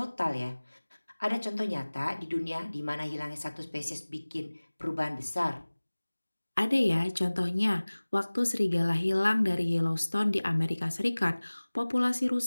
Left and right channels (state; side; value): inverted; both; correlation -1.00